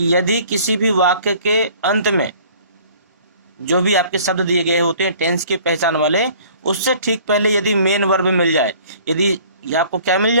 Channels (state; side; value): inverted; both; correlation -0.52